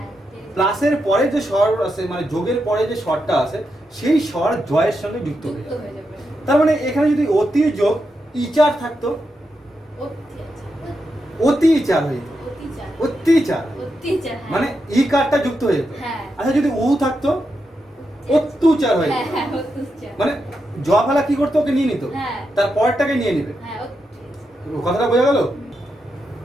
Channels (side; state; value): both; normal; correlation 0.85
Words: প্লাসের পরে যে স্বর আছে, মানে যোগের পরে যে স্বরটা আছে, সেই স্বর জয়ের সঙ্গে যুক্ত হয়ে যুক্ত যাবে। হয়ে যাবে তার মানে এখানে যদি অতি যোগ ইচার থাকতো, অত্যাচার অতি ইচার হয়ে যেত, অত্যাচার অত্যাচার, অত্যাচার হ্যাঁ। মানে ই কারটা যুক্ত হয়ে যেত। হ্যাঁ আচ্ছা যদি উ থাকতো, অত্যাচার হয়ে হ্যাঁ যেত, হ্যাঁ অত্যাচার মানে জ ফেলা কি করতো, ওকে নিয়ে নিত, হ্যাঁ তার পরেরটাকে নিয়ে নিবে। হ্যাঁ অত্যাচার কথাটা বোঝা গেল?